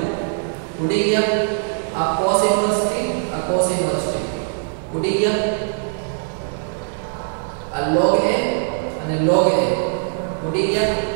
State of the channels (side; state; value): left; silent; digital silence